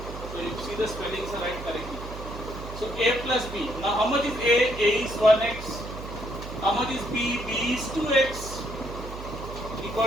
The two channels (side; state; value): right; noise; hum, 10 dB below the sound